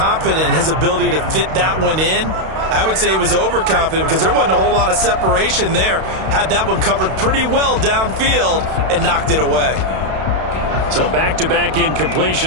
in his ability to fit that one in. I would say he was overconfident because there wasn't a whole lot of separation there. Had that one covered pretty well downfield and knocked it away. So back-to-back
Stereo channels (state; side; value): late; left; 32 ms